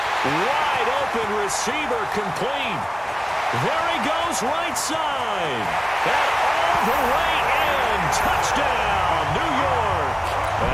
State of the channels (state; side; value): identical; both; correlation 1.00